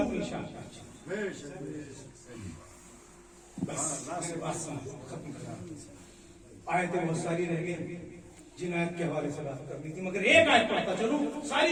शाख पे अच्छे। बस खत्म करा, आयतें बहुत सारी रह गई जिन आयत के हवाले से बात करनी थी, मगर एक आयत पढ़ता चलूं, सारी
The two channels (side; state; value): both; identical; correlation 1.00